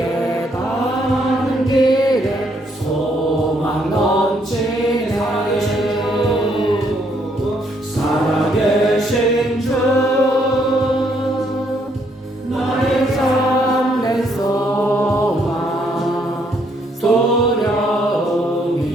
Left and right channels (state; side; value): normal; both; correlation 0.71